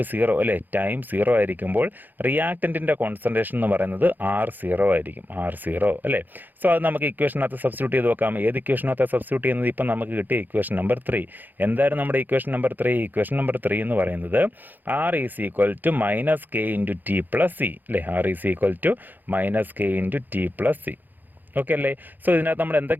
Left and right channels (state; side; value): late; left; 0.087 ms